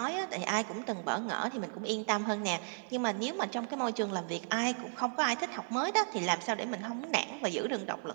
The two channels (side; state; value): left; silent; 55 dB below the other